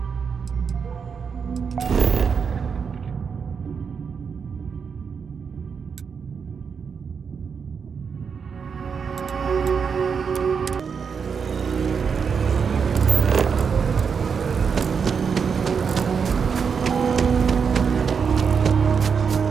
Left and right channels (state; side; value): quieter; left; 6.2 dB